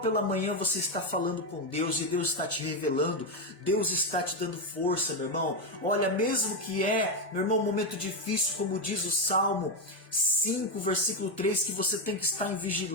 pela manhã você está falando com Deus e Deus está te revelando, Deus está te dando força, meu irmão. Olha, mesmo que meu irmão, um momento difícil, como diz o Salmo 5, versículo 3, que você tem que estar em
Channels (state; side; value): normal; both; correlation 0.08